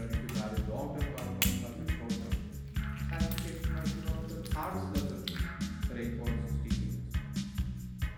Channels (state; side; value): identical; both; correlation 1.00